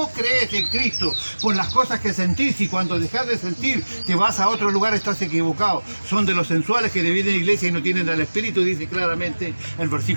crees en Cristo por las cosas que sentís y cuando dejas de sentir te vas a otro lugar, estás equivocado. Son de los sensuales que dividen la iglesia y no tienen al Espíritu, dice claramente el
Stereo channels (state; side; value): inverted; both; correlation -1.00